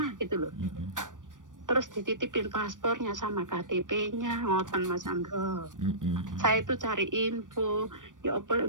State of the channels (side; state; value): left; late; 0.88 ms